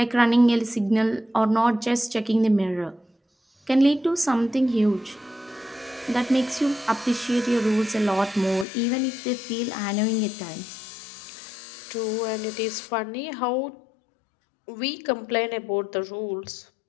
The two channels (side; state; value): right; drops out; at 8.7 s